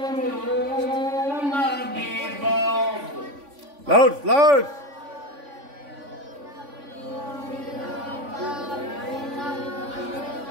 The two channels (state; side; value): late; left; 3.5 ms